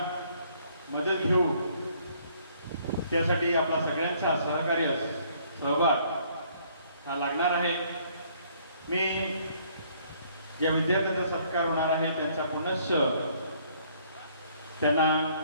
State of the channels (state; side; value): inverted; both; correlation -0.63